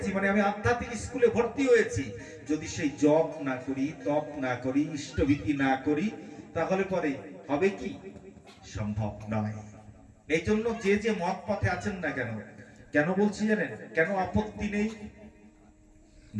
মানে আমি আধ্যাত্মিক স্কুলে ভর্তি হয়েছি, যদি সেই জপ না করি, তপ না করি, ইষ্টভীতি না করি, তাহলে পরে হবে কি? সম্ভব নয়। এই জন্য যে যে মত পথে আছেন না কেন, কেন বলছি জানেন? কেন আপত্তি নেই?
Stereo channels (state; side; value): identical; both; correlation 1.00